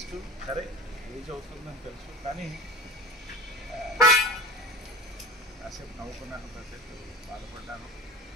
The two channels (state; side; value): normal; both; correlation 0.32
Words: సరే age అవుతుందని తెలుసు కానీ కాసేపు నవ్వుకున్నాను, కాసేపు బాధపడ్డాను.